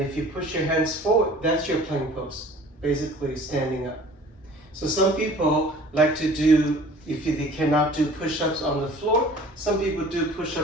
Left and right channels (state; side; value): normal; both; correlation 0.48